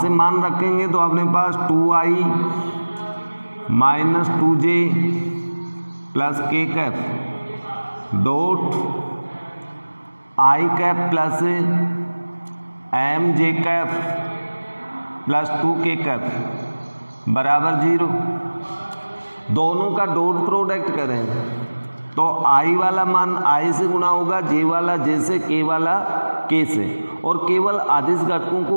से मान रखेंगे तो अपने पास 2i - 2j + k cap dot i cap plus mj cap plus 2k cap बराबर 0। दोनों का डॉट प्रोडक्ट करें तो i वाला मान i से गुणा होगा, j वाला j से, k वाला k से, और केवल अदिश घटकों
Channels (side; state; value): both; inverted; correlation -1.00